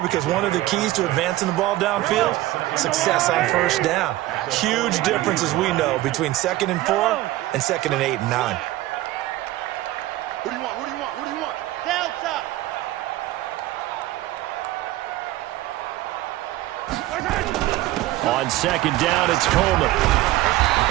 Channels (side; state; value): left; quieter; 16.5 dB